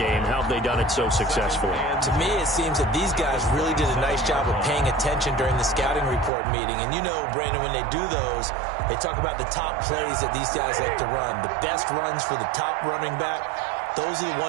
How have they done it so successfully? To me, it seems that these guys really did a nice job of paying attention during the scouting report meeting. And you know, Brandon, when they do those, they talk about the top plays that these guys like to run. The best runs for the top running back, those are the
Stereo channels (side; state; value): left; drops out; at 6.3 s